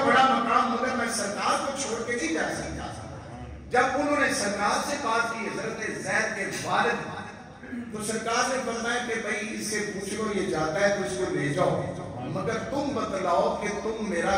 بڑا مقام، مگر میں سرکار کو چھوڑ کے نہیں جا سکتا۔ جب انہوں نے سرکار سے بات کی حضرت زید کے والد، تو سرکار نے فرمایا کہ بھائی اس سے پوچھ لو یہ جاتا ہے تو اس کو لے جاؤ، مگر تم بتلاؤ کہ تم میرا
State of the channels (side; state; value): both; identical; correlation 1.00